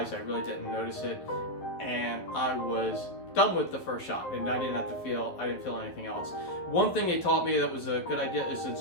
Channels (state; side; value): late; right; 11 ms